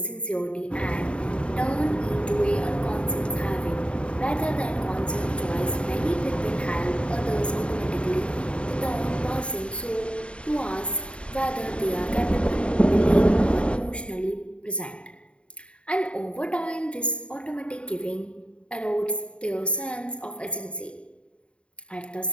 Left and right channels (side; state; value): right; late; 0.058 ms